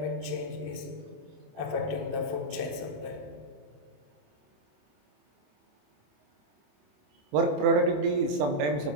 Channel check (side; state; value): left; late; 27 ms